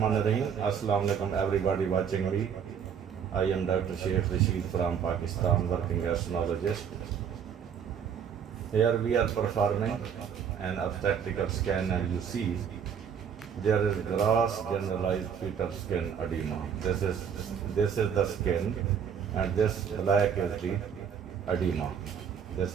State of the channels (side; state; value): left; quieter; 7.7 dB